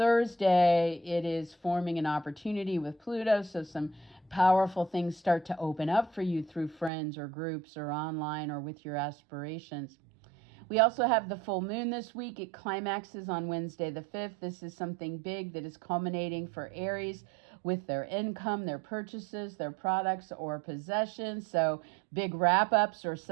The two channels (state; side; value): drops out; left; at 6.9 s